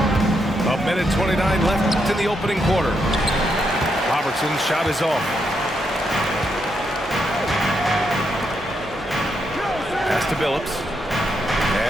A minute 29 left in the opening quarter. Robertson's shot is off. Pass to Billups.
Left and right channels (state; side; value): normal; both; correlation 0.80